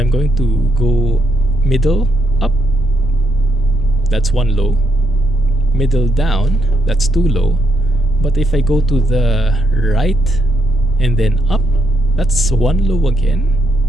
going to go middle up, that's one low. Middle down, that's two low. But if I go to the right and then up, that's one low again.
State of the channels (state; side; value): normal; both; correlation 0.74